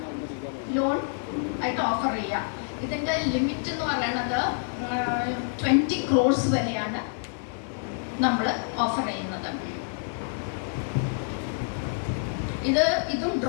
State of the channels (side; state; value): right; silent; digital silence